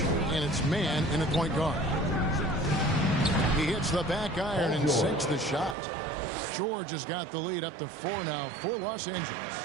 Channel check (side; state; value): left; drops out; at 5.8 s